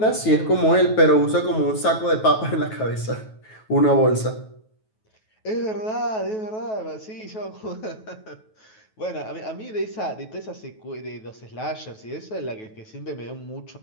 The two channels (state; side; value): late; right; 9.3 ms